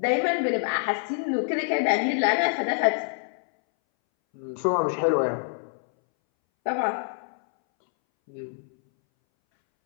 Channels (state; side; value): silent; right; 61 dB below the other